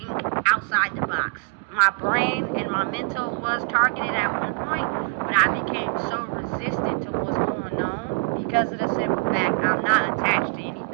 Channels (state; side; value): quieter; left; 34.5 dB